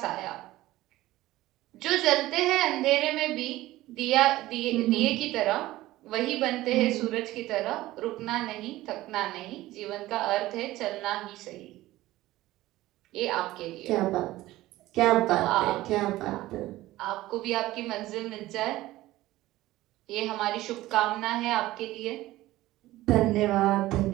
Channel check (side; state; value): left; quieter; 16.8 dB